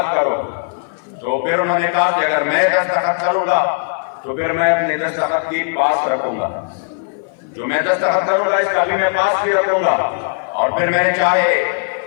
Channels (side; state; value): right; silent; 58 dB below the other